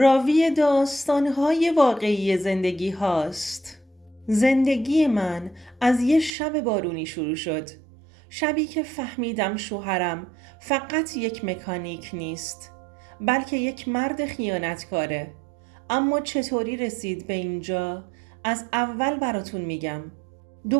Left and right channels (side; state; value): left; drops out; at 6.3 s